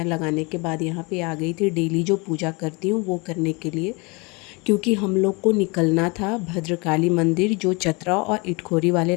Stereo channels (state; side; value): quieter; right; 28.3 dB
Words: लगाने के बाद यहाँ पे आ गई थी डेली जो पूजा करती हूँ वो करने के लिए। क्योंकि हम लोग को निकलना था भद्रकाली मंदिर जो चतरा और इटखोरी वाले